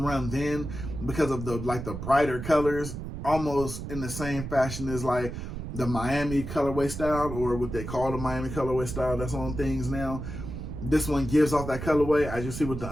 run then, because of the brighter colors, almost in the same fashion as like the Miami colorway style, or what they call the Miami colorway style that's on things now. This one gives off that colorway, as you see with the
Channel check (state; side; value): noise; right; rumble, 7 dB below the sound